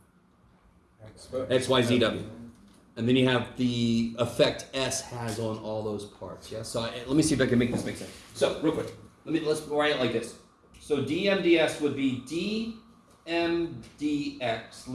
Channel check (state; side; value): identical; both; correlation 1.00